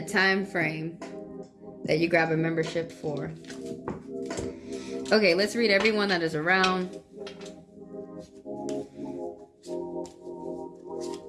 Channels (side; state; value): both; identical; correlation 1.00